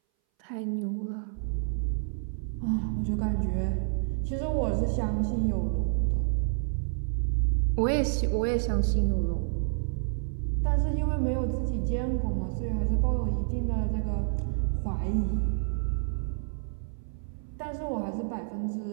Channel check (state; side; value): silent; left; 59 dB below the other